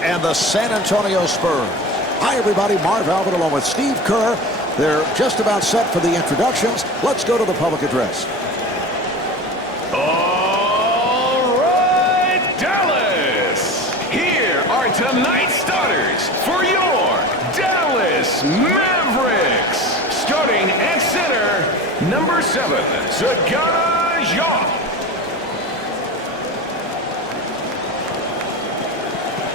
and the San Antonio Spurs. Hi, everybody. Marv Albert along with Steve Kerr. They're just about set for the introductions. Let's go to the public address. All right, Dallas. Here are tonight's starters for your Dallas Mavericks. Starting at center, number 7, Sagana Jacques.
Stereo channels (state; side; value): normal; both; correlation 0.31